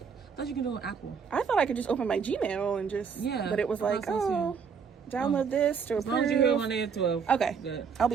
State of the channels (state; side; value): quieter; left; 6.2 dB